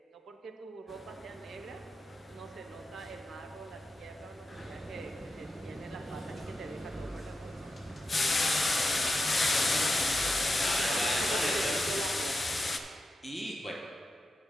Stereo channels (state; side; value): normal; both; correlation 0.90